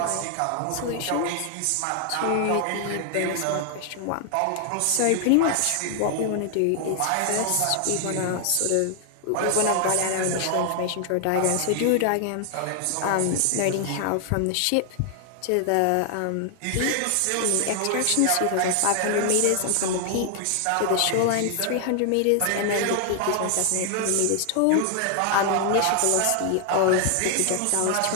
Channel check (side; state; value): both; different; correlation 0.00